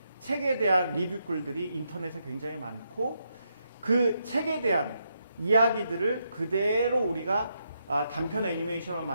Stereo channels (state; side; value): inverted; both; correlation -0.80